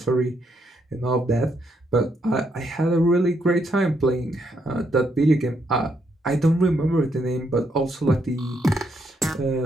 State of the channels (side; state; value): both; normal; correlation 0.76